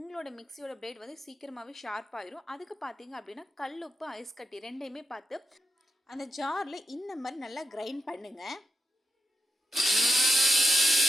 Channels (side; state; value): both; normal; correlation 0.87